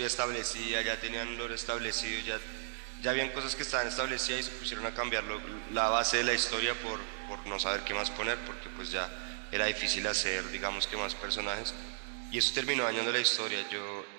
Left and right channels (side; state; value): left; silent; digital silence